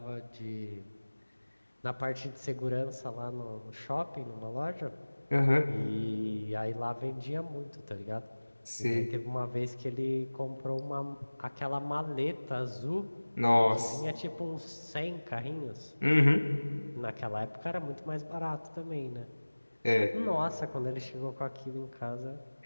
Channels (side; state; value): both; inverted; correlation -1.00